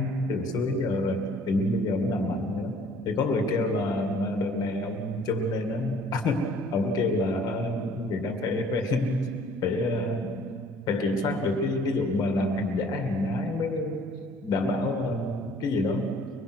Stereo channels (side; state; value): both; normal; correlation 0.56